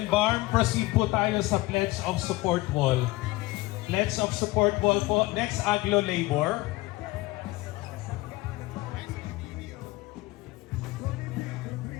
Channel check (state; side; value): quieter; right; 20.2 dB